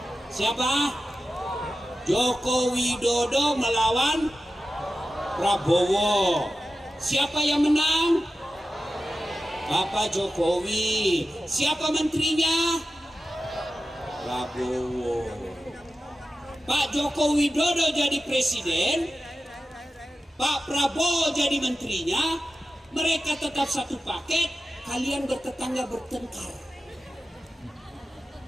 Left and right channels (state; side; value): normal; both; correlation 0.93